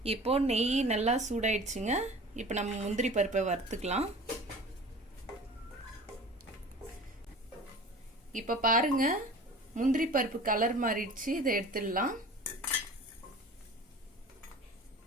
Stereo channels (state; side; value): normal; both; correlation 0.41